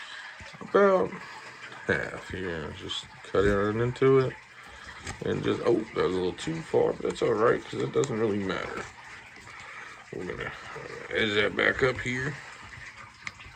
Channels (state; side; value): identical; both; correlation 1.00